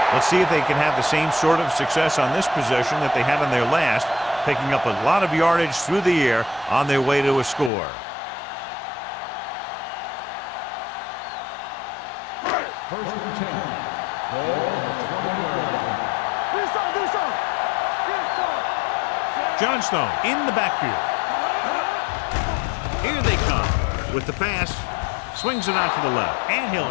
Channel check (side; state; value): right; drops out; at 7.7 s